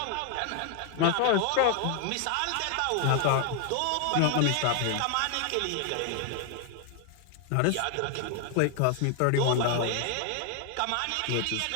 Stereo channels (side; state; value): both; different; correlation 0.00